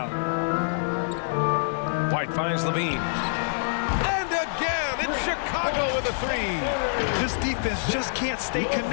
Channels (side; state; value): right; silent; digital silence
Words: White finds LaVine. And again, it's Chicago with a 3. This defense just can't stay